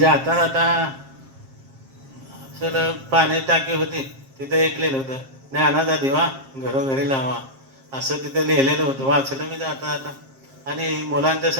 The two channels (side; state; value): left; late; 7.5 ms